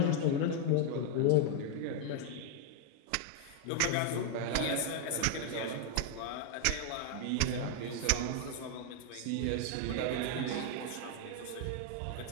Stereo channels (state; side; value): different; both; correlation 0.00